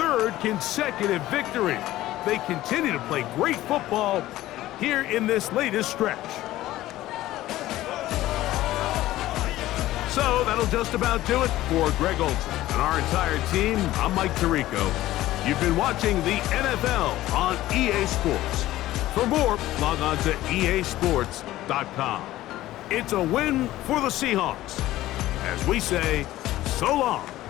consecutive victory. They continue to play great football here in this latest stretch. So that'll just about do it for Greg Olson and our entire team. I'm Mike Tirico. You've been watching the NFL on EA Sports. For more, log on to easports.com. It's a win for the Seahawks. As we say, so long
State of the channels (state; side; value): quieter; right; 15.5 dB